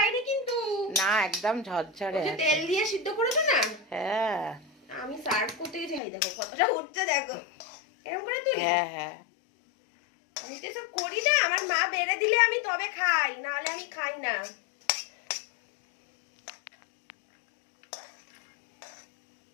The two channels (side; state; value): right; drops out; at 6.0 s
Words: কিন্তু না, একদম ঝরঝরে। ওই যে তেল দিয়ে সিদ্ধ করেছো না? হ্যাঁ আমি সার্ভ করতে যাই, দেখো কতটা উঠছে, দেখো এরকম করে তুই। হ্যাঁ হ্যাঁ আমি তো সব করি না, আমার মা বেড়ে দিলে আমি তবে খাই, না হলে আমি খাই না।